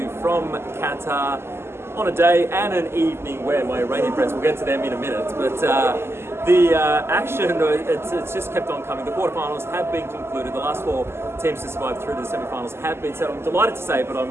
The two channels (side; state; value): left; late; 0.12 ms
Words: from Qatar on a day and an evening where my Iranian friends, we'll get to them in a minute, but the action, it's just kept on coming. The quarterfinals have been concluded. The last four teams to survive through to the semi-finals have been set. I'm delighted to say, but